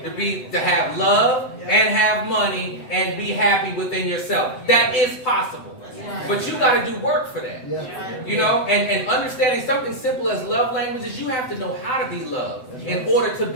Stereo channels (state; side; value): late; right; 7.9 ms